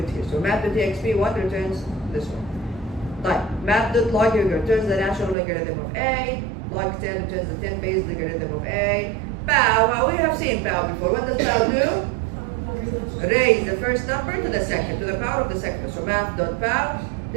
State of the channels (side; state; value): left; drops out; at 5.4 s